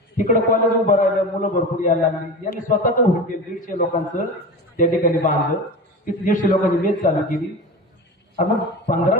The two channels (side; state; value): both; normal; correlation 0.29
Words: तिकडं कॉलेज उभं राहिलं, मुलं भरपूर यायला लागली. यांनी स्वतःच हॉटेल 150 लोकांचं त्या ठिकाणी बांधलं. तिथे 150 लोकांची मेस चालू केली. मग